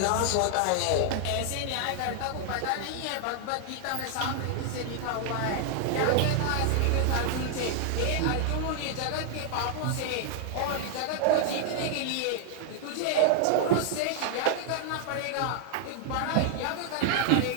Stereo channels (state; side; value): different; both; correlation 0.00